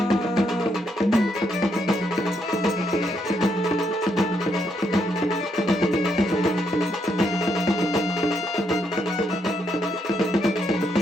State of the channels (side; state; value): both; normal; correlation 0.77